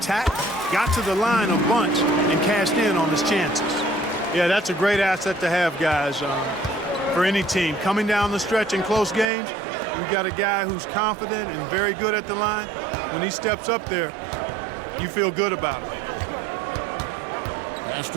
got to the line a bunch, and cashed in on his chances. Yeah, that's a great asset to have, guys, for any team. Coming down the stretch in close games, you've got a guy who's confident and very good at the line. When he steps up there, you feel good about it. Pass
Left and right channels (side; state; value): left; drops out; at 9.2 s